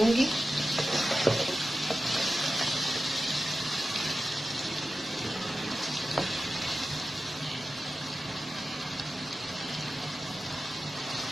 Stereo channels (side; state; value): both; normal; correlation 0.94